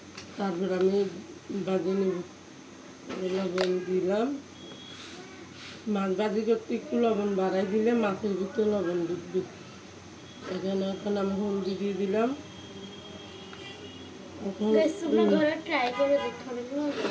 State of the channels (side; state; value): both; identical; correlation 1.00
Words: তারপর আমি ভাজি নেব। লবণ দিলাম। মাছ ভাজি করতে একটু লবণ বাড়াই দিলে মাছের ভিতরে লবণ ঢুকবে। এখানে এখন আমি হলদি দিয়ে দিলাম। এখন